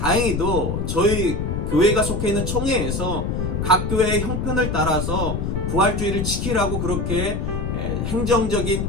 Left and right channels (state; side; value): noise; left; rumble, 2 dB below the sound